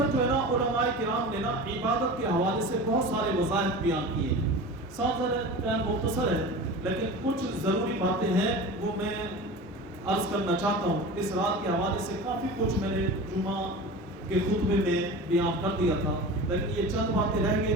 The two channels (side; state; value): both; normal; correlation 0.33